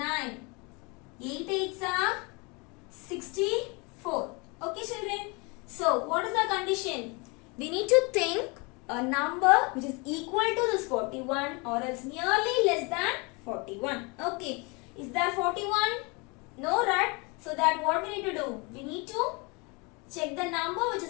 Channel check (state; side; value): quieter; right; 29.3 dB